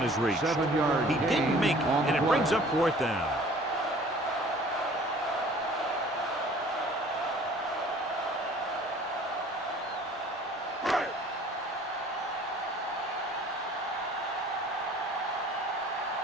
is reached. He didn't make it, and it brings up fourth down.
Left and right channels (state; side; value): normal; both; correlation 0.50